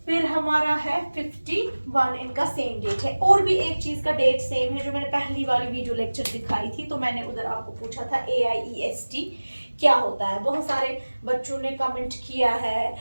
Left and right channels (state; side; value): inverted; both; correlation -1.00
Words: फिर हमारा है 51, इनका सेम डेट है। और भी एक चीज का डेट सेम है जो मैंने पहली वाली वीडियो लेक्चर दिखाई थी, तो मैंने उधर आपको पूछा था AIEST क्या होता है। बहुत सारे बच्चों ने कमेंट किया है,